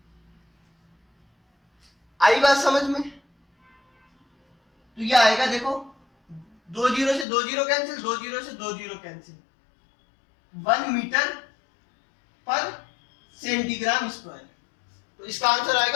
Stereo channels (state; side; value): drops out; right; at 7.2 s